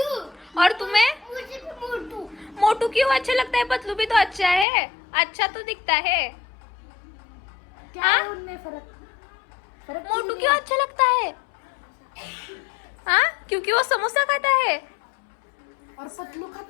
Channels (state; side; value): drops out; right; at 4.7 s